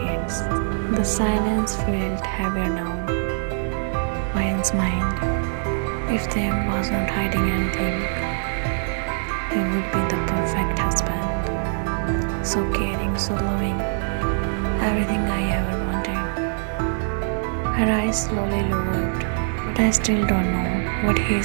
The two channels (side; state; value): left; silent; digital silence